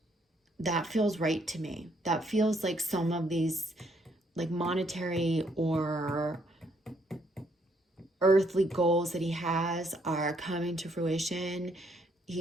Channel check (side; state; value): both; normal; correlation 0.70